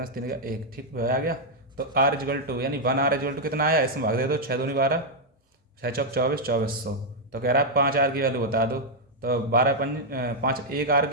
से 3 गया 1। ठीक, आ गया। तो R इजगल टू यानी 1R इजगल टू कितना आया, इसमें भाग दे दो, 6 दूनी 12, 6 चौक 24, 2400। तो कह रहा है 5R की वैल्यू बता दो, तो 12 5 1R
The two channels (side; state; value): both; normal; correlation -0.02